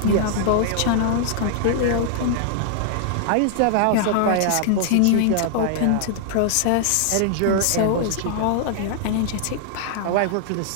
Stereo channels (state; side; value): different; both; correlation -0.01